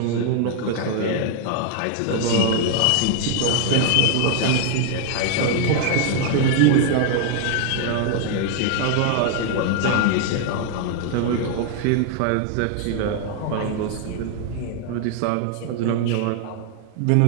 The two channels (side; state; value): both; different; correlation 0.00